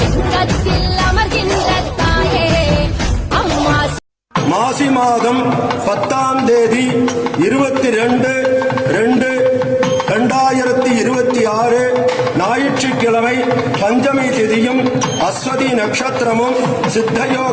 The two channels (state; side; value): identical; both; correlation 1.00